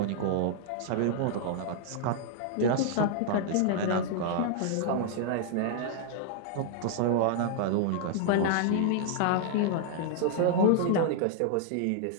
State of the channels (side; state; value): both; different; correlation -0.01